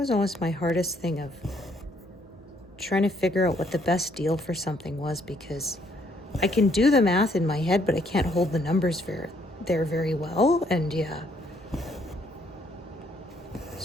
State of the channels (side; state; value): both; normal; correlation 0.68